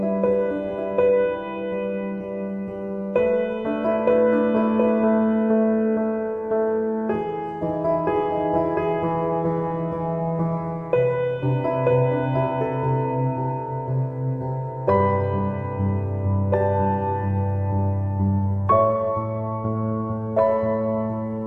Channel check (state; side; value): identical; both; correlation 1.00